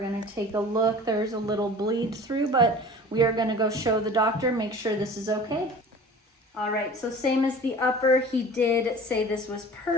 take a look. There's a little bleed through, but we are gonna go show the doctor, make sure this is okay. All right, so same as the upper, he did say this was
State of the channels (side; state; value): both; normal; correlation 0.42